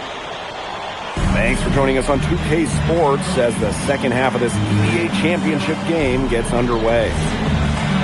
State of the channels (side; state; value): both; identical; correlation 1.00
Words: Thanks for joining us on 2K Sports as the second half of this EBA Championship game gets underway.